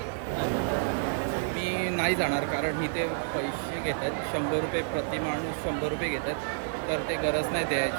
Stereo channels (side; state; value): left; silent; 58 dB below the other